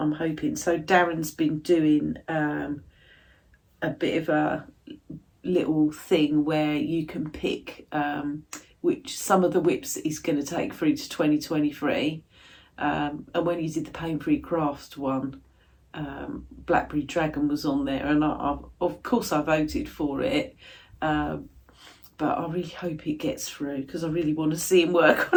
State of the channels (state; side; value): identical; both; correlation 1.00